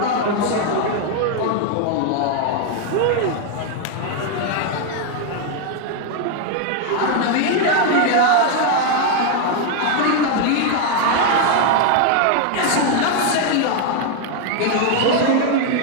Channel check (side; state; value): both; different; correlation 0.01